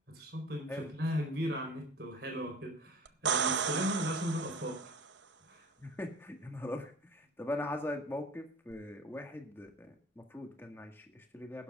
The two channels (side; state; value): both; normal; correlation 0.41